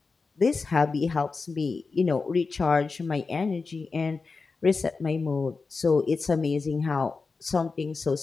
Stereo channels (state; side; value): quieter; right; 4.4 dB